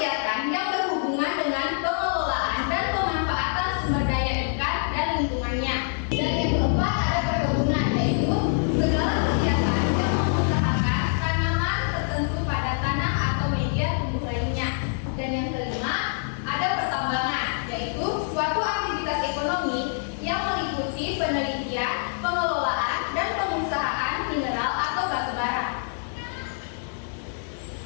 yang berhubungan dengan pengelolaan dan pemanfaatan sumber daya ikan dan lingkungannya. Dan yang keempat ada perkebunan, yaitu segala kegiatan yang mengusahakan tanaman tertentu pada tanah atau media tumbuh lainnya. Dan yang kelima ada pertambangan, yaitu suatu aktivitas ekonomi yang meliputi penelitian, pengelolaan, dan pengusahaan mineral atau batu bara.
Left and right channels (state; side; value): silent; right; digital silence